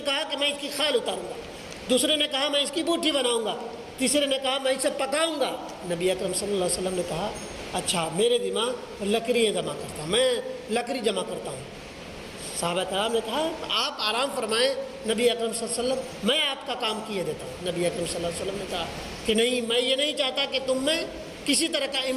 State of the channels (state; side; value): identical; both; correlation 1.00